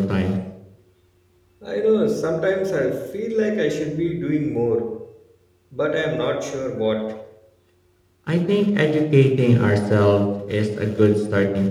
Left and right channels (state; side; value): identical; both; correlation 1.00